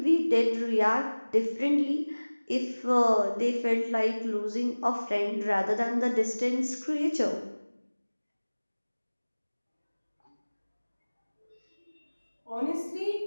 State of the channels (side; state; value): both; inverted; correlation -1.00